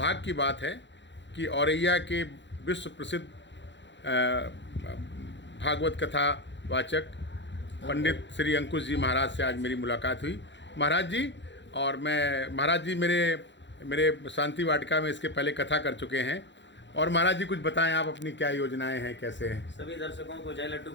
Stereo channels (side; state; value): right; late; 0.52 ms